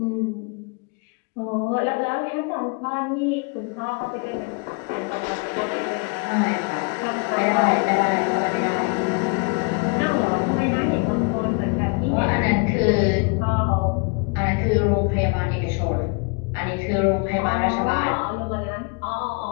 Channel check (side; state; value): right; quieter; 34.3 dB